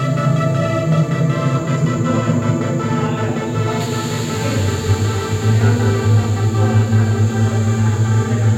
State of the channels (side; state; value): both; identical; correlation 1.00